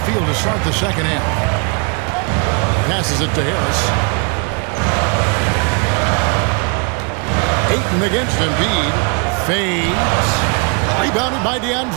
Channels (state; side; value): quieter; left; 34.7 dB